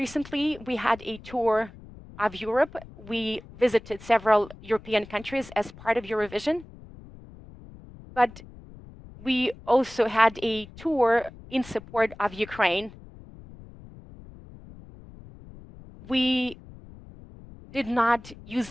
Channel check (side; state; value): left; noise; rumble, 19 dB below the sound